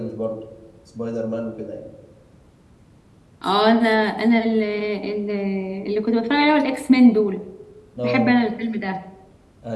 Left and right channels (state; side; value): identical; both; correlation 1.00